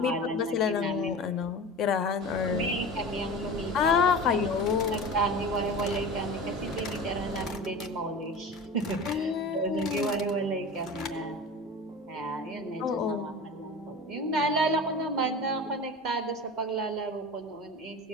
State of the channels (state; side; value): normal; both; correlation 0.33